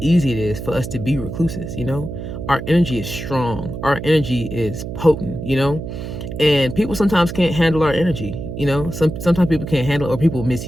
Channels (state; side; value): noise; right; hum, 8 dB below the sound